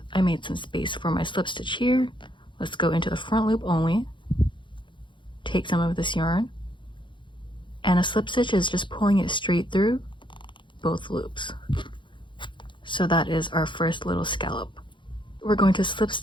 I made some space for my slip stitch here. Let's go into the front loop only, take some of this yarn, and a slip stitch is just pulling it straight through both loops. So that is our first little scallop. We're going to slip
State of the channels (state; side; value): late; right; 0.23 ms